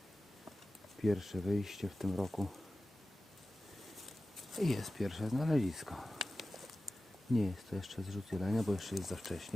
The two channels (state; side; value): normal; both; correlation 0.95